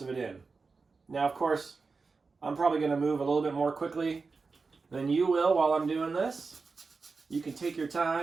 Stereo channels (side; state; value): left; quieter; 4.4 dB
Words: of it in. Now, of course, I'm probably going to move a little bit more quickly than you will while I'm doing this. You can take your